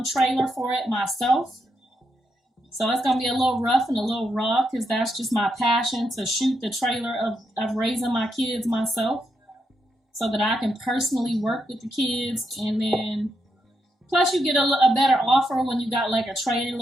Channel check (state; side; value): normal; both; correlation 0.81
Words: trailer for it myself. So it's going to be a little rough and a little raw because that's just my passion, to shoot the trailer of raising my kids myself so that I can personally work with the kids. And then plus you get a better offer when you got like a